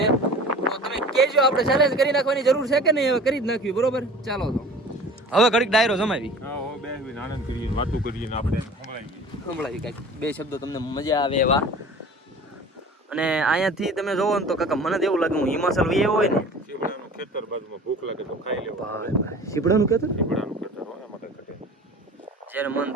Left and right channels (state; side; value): normal; both; correlation 0.42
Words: તો તમે કહેજો આપણે ચેલેન્જ કરી નાખવાની જરૂર છે કે નહીં હવે કરી જ નાખ્યું બરોબર. ચાલો તો હવે ઘડીક ડાયરો જમાવી સંભળાવી કાંઈક બે શબ્દો તમને મજા આવે એવા. અને અહીંયાથી તમે જોવો ને તો કાકા મને તો એવું લાગે હું હિમાચલ વહી હોય ને ખેતર બાજુમાં ભૂખ લાગે તો ખાઈ લેવું. સીપડાનું ખેતર એમાં કઈ ઘટે. જ્યારે મન